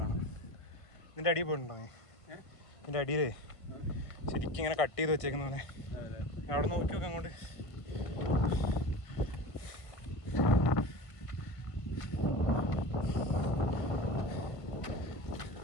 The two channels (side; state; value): right; late; 1.5 ms